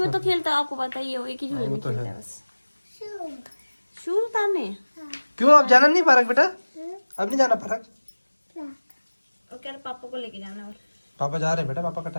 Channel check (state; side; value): inverted; both; correlation -1.00